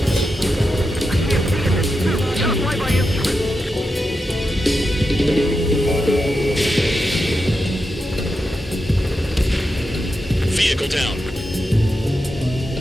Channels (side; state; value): both; normal; correlation 0.88